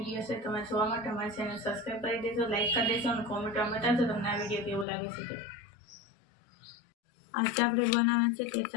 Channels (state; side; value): drops out; right; at 4.9 s